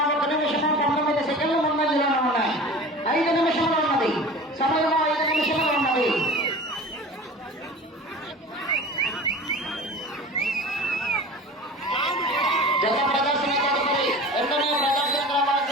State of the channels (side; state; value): both; normal; correlation 0.38